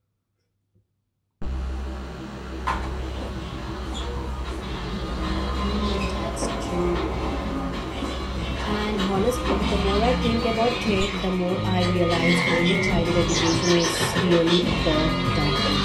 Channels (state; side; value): identical; both; correlation 1.00